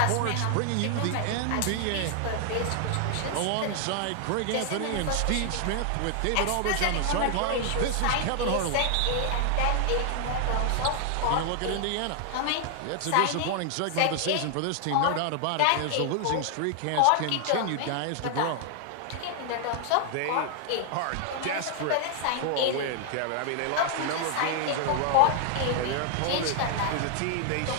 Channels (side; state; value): both; different; correlation 0.00